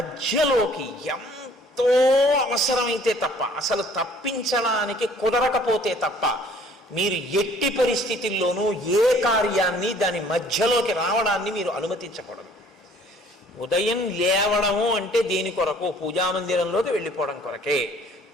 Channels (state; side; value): normal; both; correlation 0.56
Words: ఎంతో అవసరమైతే తప్ప, అసలు తప్పించడానికి కుదరకపోతే తప్ప మీరు ఎట్టి పరిస్థితుల్లోనూ ఏ కార్యాన్ని దాని మధ్యలోకి రావడాన్ని మీరు అనుమతించకూడదు. ఉదయం లేవడము అంటే దేని కొరకు? పూజామందిరంలోకి వెళ్ళిపోవడం కొరకే.